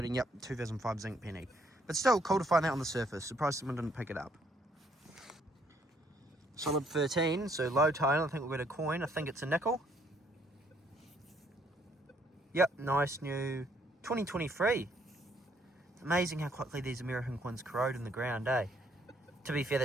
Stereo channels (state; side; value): normal; both; correlation 0.67